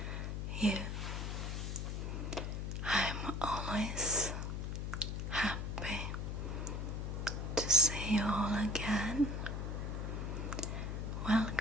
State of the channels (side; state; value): left; noise; hum, 2 dB below the sound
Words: you. I'm always happy to see you all again.